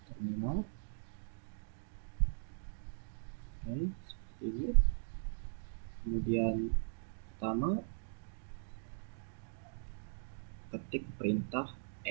terminal. Oke, seperti ini. Kemudian pertama, ketik perintah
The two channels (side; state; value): left; silent; digital silence